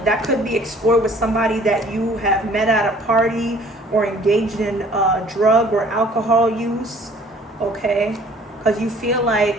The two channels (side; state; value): both; normal; correlation 0.54